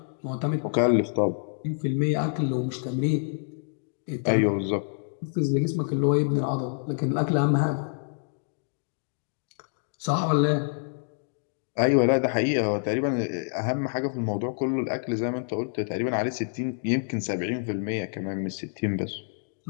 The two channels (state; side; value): silent; right; digital silence